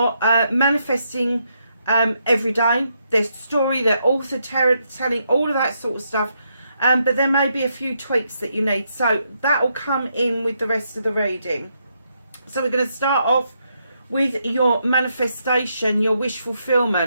manifesting every day. Their story, their author telling, all of that sort of stuff. But there may be a few tweaks that you need. So that will come in with the rest of the reading. So we're going to start off with your manifestation, your wish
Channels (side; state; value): both; inverted; correlation -0.79